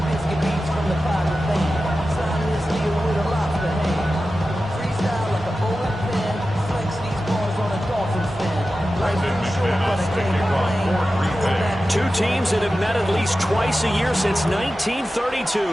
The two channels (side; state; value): both; normal; correlation 0.93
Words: Biscuit beats from the pirate band. Sign this deal with a lobster hand. Freestyle like a bowling pin. Flex these bars on a dolphin fin. Life is short, but I can't complain. Two teams that have met at least twice a year since